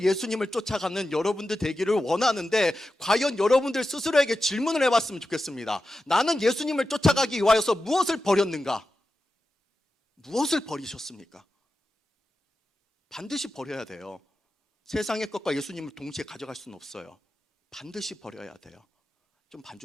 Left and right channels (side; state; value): both; normal; correlation 0.92